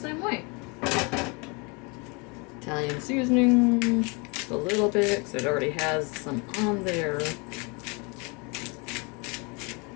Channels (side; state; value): right; quieter; 30.4 dB